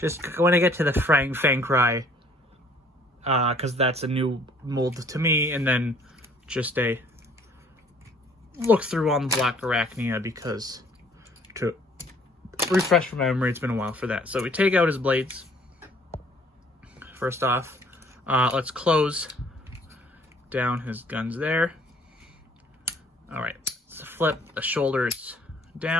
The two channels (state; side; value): normal; both; correlation 0.58